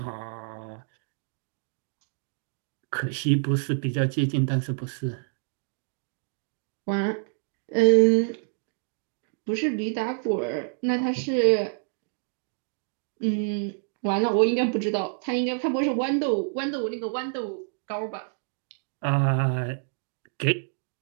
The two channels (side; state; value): left; silent; digital silence